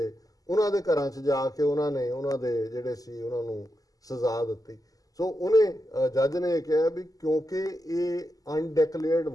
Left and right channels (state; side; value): late; right; 0.17 ms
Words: ਉਹਨਾਂ ਦੇ ਘਰਾਂ 'ਚ ਜਾ ਕੇ ਉਹਨਾਂ ਨੇ ਉਹਨਾਂ ਦੇ ਜਿਹੜੇ ਸੀ ਉਹਨਾਂ ਨੂੰ ਸਜ਼ਾ ਦਿੱਤੀ। ਸੋ ਉਹਨੇ ਜੱਜ ਨੇ ਕਿਹਾ ਵੀ ਕਿਉਂਕਿ ਇਹ ਅਨਡਿਕਲੇਅਰਡ